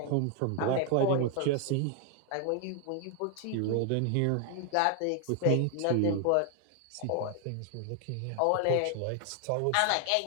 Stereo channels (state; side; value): different; both; correlation 0.00